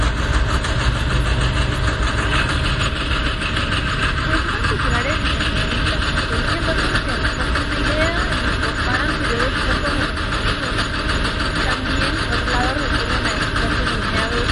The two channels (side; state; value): both; identical; correlation 1.00